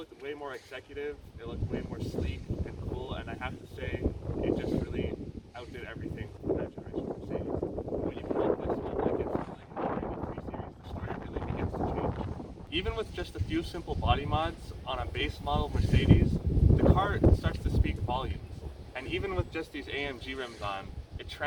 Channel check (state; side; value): identical; both; correlation 1.00